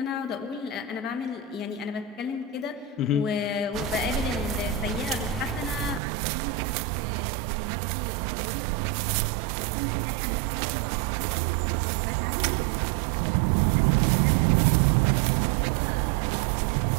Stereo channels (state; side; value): drops out; left; at 6.0 s